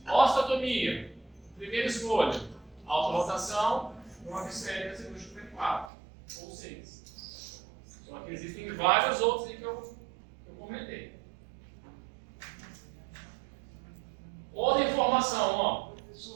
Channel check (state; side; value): drops out; left; at 5.9 s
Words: Osteotomia. Primeira escolha. Alta rotação, brocas esféricas e cirúrgica 4 ou 6. Só que existem vários outros aí que eu comentei. Outra informação, ó.